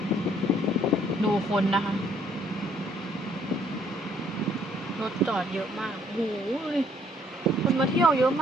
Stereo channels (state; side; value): normal; both; correlation 0.65